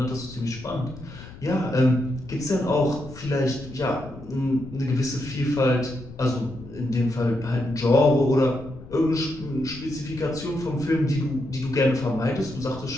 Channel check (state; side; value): noise; left; rumble, 16 dB below the sound